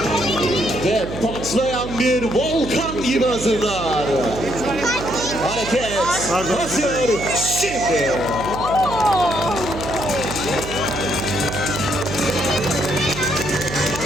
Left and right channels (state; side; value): noise; right; hum, 9 dB below the sound